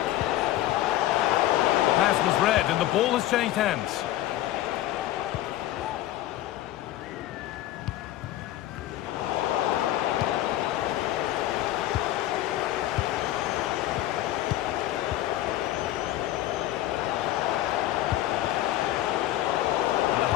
Pass was read and the ball has changed hands. And the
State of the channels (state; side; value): quieter; right; 14.4 dB